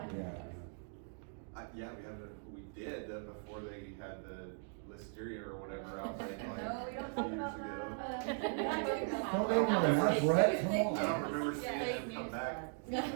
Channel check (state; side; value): silent; left; 52 dB below the other